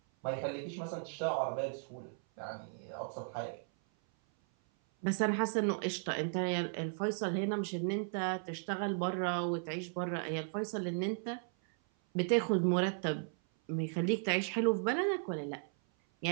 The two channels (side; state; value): left; silent; 54 dB below the other